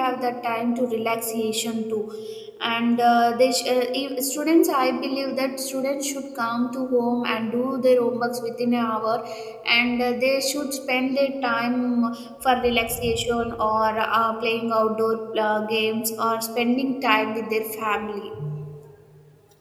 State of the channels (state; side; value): identical; both; correlation 1.00